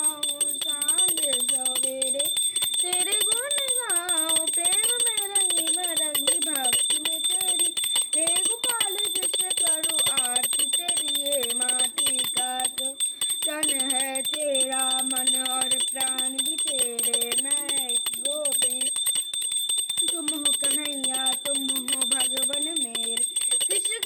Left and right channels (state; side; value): identical; both; correlation 1.00